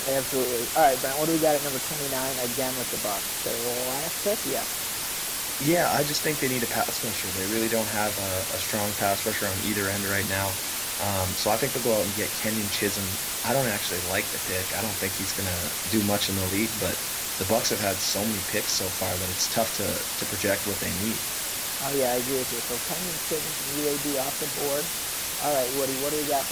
absolutely. All right, Brent, what do we got at number 29 again with the Bucs? Their last pick? Yeah. Yeah, I just think they need a pass rusher. They really don't have a strong pass rusher on either end right now. So I think they'll go out and get Kenyon Chisholm. I don't actually like the pick. I don't think he's going to do much in the league, but the Bucs have had so many picks so far that it's tough to project what they need. Oh, yeah, I agree with you. So Kenyon Chisholm from UAB off the board. All right, Woody, what do we got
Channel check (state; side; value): identical; both; correlation 1.00